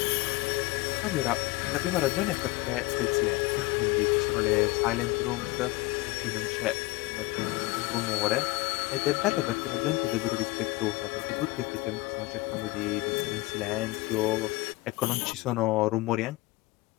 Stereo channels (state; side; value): quieter; right; 21.5 dB